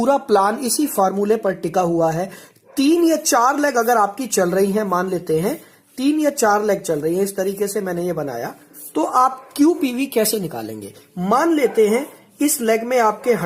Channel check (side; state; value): both; identical; correlation 1.00